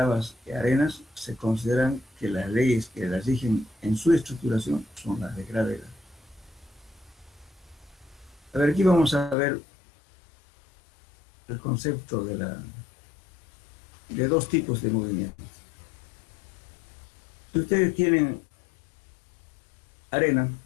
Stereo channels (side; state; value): right; drops out; at 9.3 s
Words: y arenas se consideran que las leyes que las rigen en su estructuración son las de gravedad. A ver, aquí vamos a ver el concepto de dos tipos de movimientos. Si ustedes tienen arena,